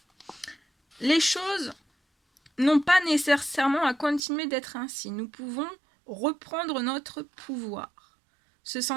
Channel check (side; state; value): left; drops out; at 4.2 s